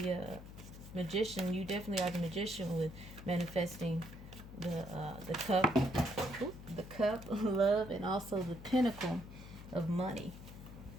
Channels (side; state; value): left; noise; hum, 14 dB below the sound